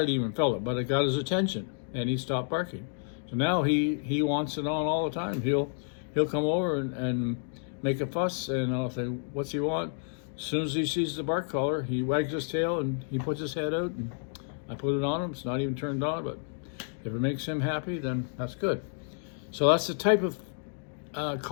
even felt it, but it got his attention, and he stopped barking. So now he wants it on all the time. He'll come over and make a fuss, and I'll say, what's he want? As soon as he sees the bark collar, he wags his tail and he puts his head out, and I put it on him. It's not even turned on, but if it makes him happy, then that's good. So that's the type of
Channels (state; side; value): silent; right; 57 dB below the other